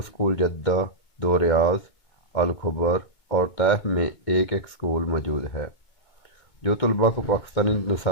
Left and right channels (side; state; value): right; late; 2.2 ms